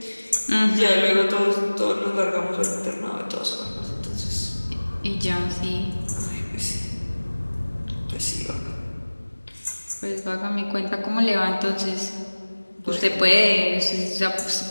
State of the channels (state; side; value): inverted; both; correlation -1.00